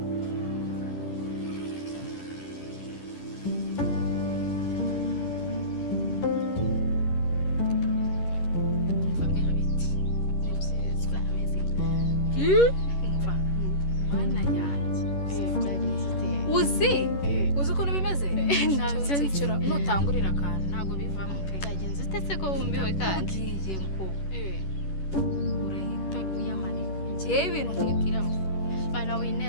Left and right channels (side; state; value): right; late; 11 ms